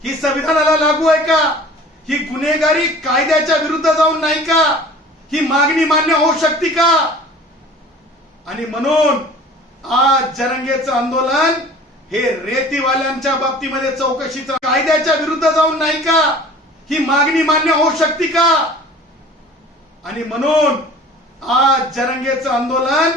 ही संविधानाला लागू आहे का? ही गुन्हेगारी कायद्याच्या विरुद्ध जाऊन नाही का? ही मागणी मान्य होऊ शकते का? आणि म्हणून आज जरंगेचं आंदोलन हे रेतीवाल्यांच्या बाबतीमध्ये चौकशीचं कायद्याच्या विरुद्ध जाऊन नाही का? ही मागणी मान्य होऊ शकते का? आणि म्हणून आज जरंगेचं आंदोलन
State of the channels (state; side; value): normal; both; correlation 0.45